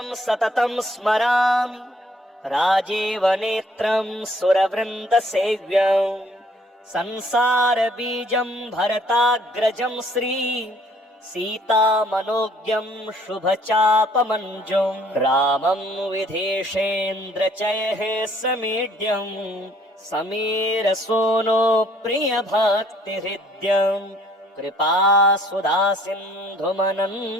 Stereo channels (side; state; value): both; normal; correlation 0.61